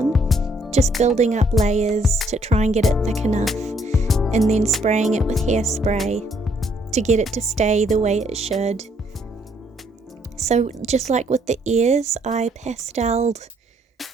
just building up layers to try and get it thick enough, and then spraying it with hairspray to get it to stay the way it should. So just like with the ears, I pasteled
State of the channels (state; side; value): normal; both; correlation 0.68